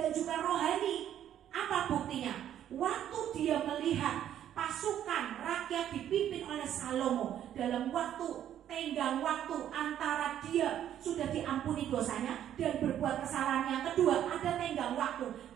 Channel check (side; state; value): left; quieter; 10.7 dB